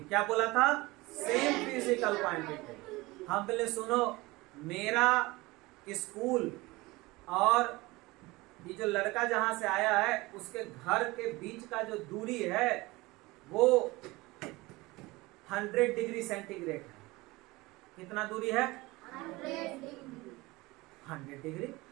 क्या बोला था? Same physical quantity. हम पहले सुनो, मेरा स्कूल और ये जो लड़का जहां से आया है उसके घर के बीच का जो दूरी है वो 100 डिग्री सेंटीग्रेड है। कितना दूरी है? 100 डिग्री।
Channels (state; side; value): quieter; left; 21.6 dB